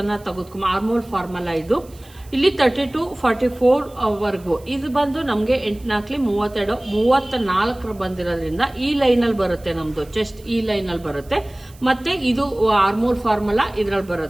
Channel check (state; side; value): noise; right; hiss, 26 dB below the sound